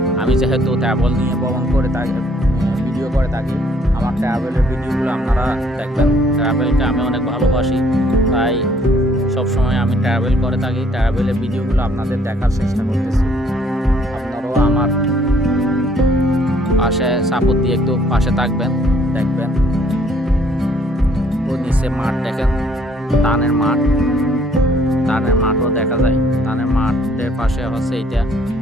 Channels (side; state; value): both; normal; correlation 0.63